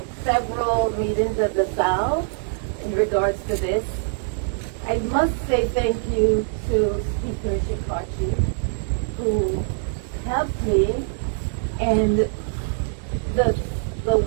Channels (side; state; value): left; silent; 63 dB below the other